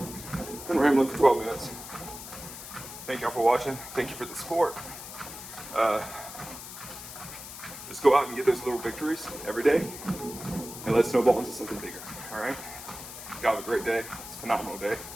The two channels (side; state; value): left; noise; hiss, 12 dB below the sound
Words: Been rambling for 12 minutes. Thank y'all for watching. Thank you for the support. Just go out and get those little victories every day, and let's snowball into something bigger. All right. Y'all have a great day. It's a phenomenal day.